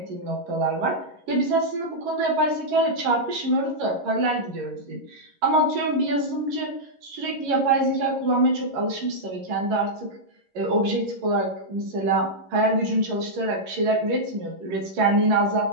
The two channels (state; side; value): late; left; 11 ms